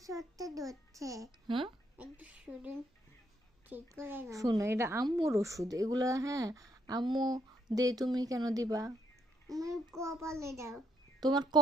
সত্যি ধরছে হ্যাঁ একটু শরীর ঠিক করে না শোনো, এটা আম্মুর ওষুধ এগুলা। হ্যাঁ আম্মু দে, তুমি কেন দিবা? আমার কপালে দাও তোমার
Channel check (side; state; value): both; normal; correlation 0.72